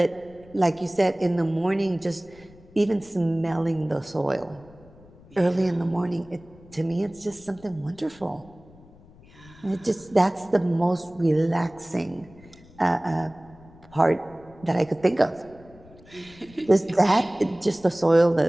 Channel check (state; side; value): noise; left; rumble, 24 dB below the sound